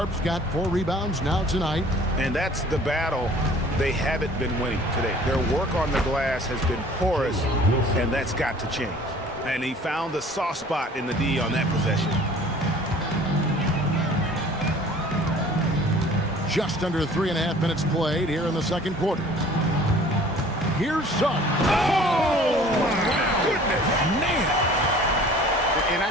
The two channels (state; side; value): normal; both; correlation 0.50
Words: got 4 rebounds now tonight. And that's the battle they haven't been winning today. Their work on the glass has been porous, and that's got to change. And he found the soft spot in the D on that possession. Just under 3.5 minutes played here in the second quarter. Here's Suggs. Oh, my goodness. Man. And